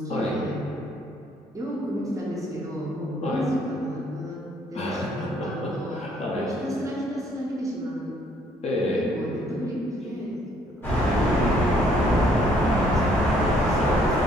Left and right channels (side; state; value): both; normal; correlation 0.65